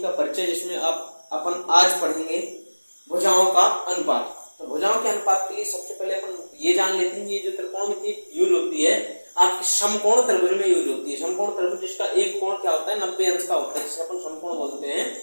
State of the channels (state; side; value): inverted; both; correlation -1.00